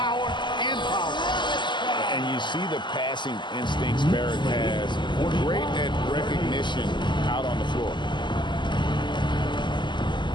and power. And you see the passing instincts Barrett has. Great at recognition out on the floor.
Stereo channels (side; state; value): right; late; 0.22 ms